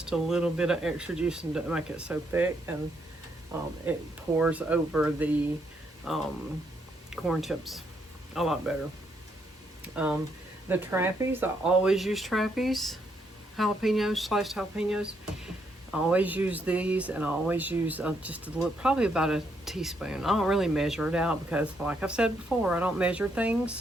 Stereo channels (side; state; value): both; normal; correlation 0.75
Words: a little bit of extra juice and to make it so thick, and It pours over the corn chips a lot better. The trappies, I always use trappies, jalapenos, sliced jalapenos. I always use these, and I always use just a little, probably about a teaspoon. I don't really measure it out because, like I've said before, I don't measure